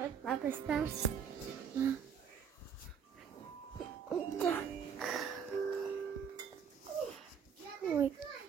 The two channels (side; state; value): left; quieter; 7.3 dB